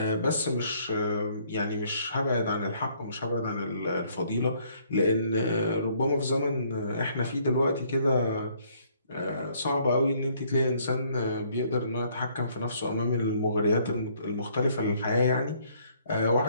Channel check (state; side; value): inverted; both; correlation -0.64